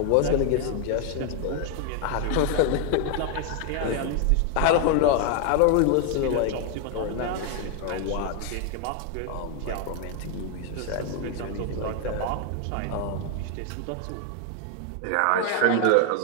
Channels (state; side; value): different; both; correlation 0.01